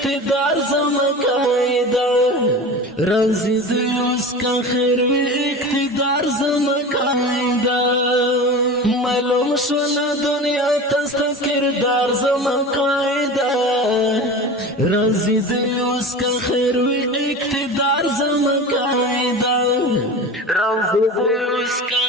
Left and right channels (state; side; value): normal; both; correlation 0.32